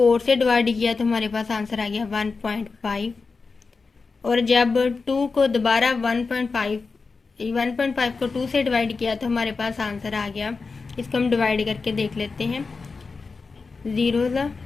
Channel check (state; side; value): quieter; right; 4.4 dB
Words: से डिवाइड किया तो हमारे पास आंसर आ गया 1.5, और जब 2 को दोबारा 1.5 को 2 से डिवाइड किया तो हमारे पास आंसर आ गया। इसको हम डिवाइड करके देख लेते हैं। 0